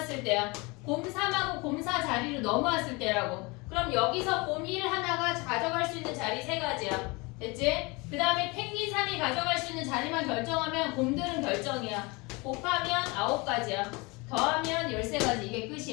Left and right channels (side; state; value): right; quieter; 26.5 dB